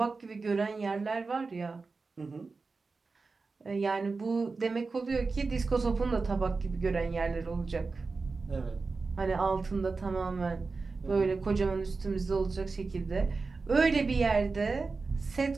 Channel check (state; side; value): quieter; left; 4.1 dB